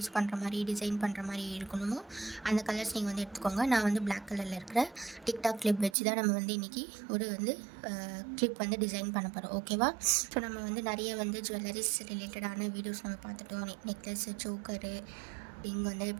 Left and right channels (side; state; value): left; drops out; at 6.0 s